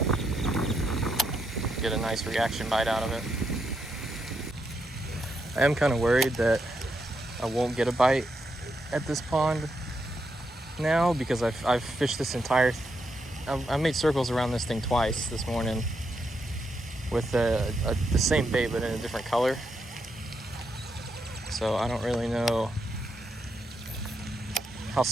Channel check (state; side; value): normal; both; correlation 0.81